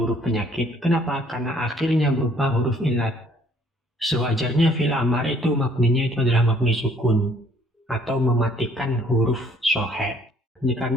penyakit. Kenapa? Karena akhirnya berupa huruf illat. Sewajarnya fi'il amar itu mabninya itu adalah mabni sukun atau mematikan huruf shohe.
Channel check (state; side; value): normal; both; correlation 0.61